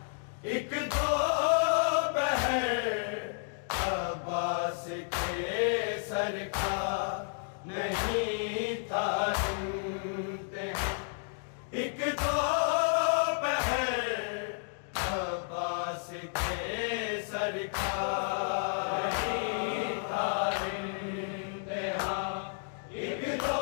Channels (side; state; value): right; silent; digital silence